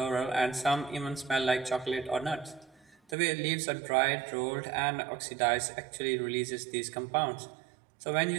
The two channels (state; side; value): drops out; left; at 3.2 s